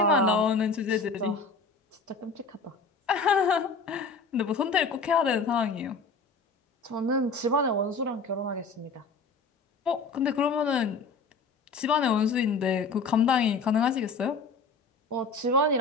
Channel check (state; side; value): quieter; right; 4.1 dB